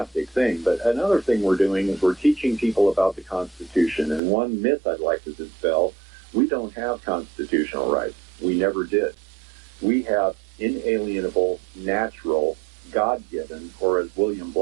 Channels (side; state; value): left; drops out; at 4.2 s